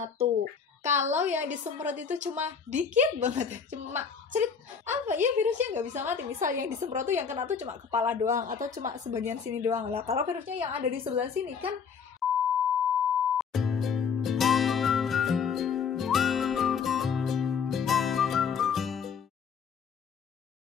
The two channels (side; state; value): right; quieter; 6.4 dB